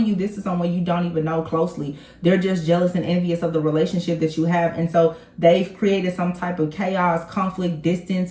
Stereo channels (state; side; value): identical; both; correlation 1.00